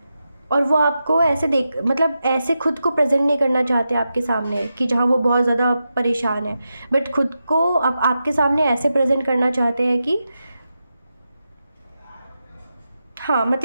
और वो आपको ऐसे मतलब ऐसे खुद को प्रेजेंट नहीं करना चाहते आपके सामने कि जहाँ वो बहुत ज़्यादा परेशान है, बट खुद को आपके सामने ऐसे प्रेजेंट करना चाहते हैं कि हाँ,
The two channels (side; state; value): both; inverted; correlation -0.89